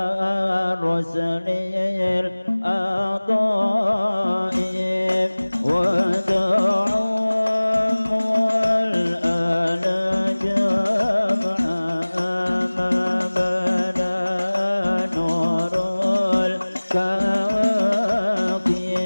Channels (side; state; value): both; inverted; correlation -1.00